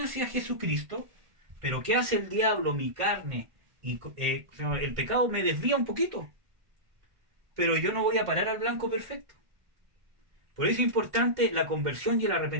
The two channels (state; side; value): late; left; 1.5 ms